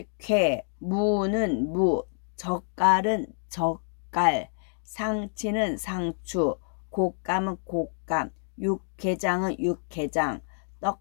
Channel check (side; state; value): right; silent; 60 dB below the other